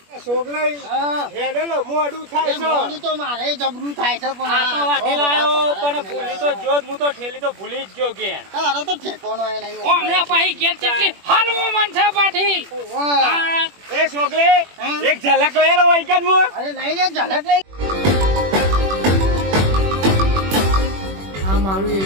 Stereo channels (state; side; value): late; left; 21 ms